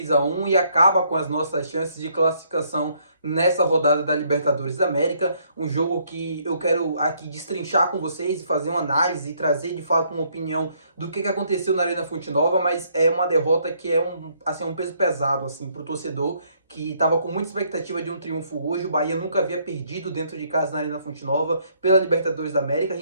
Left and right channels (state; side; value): inverted; both; correlation -0.68